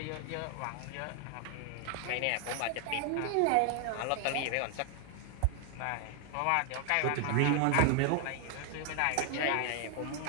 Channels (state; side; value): different; both; correlation 0.00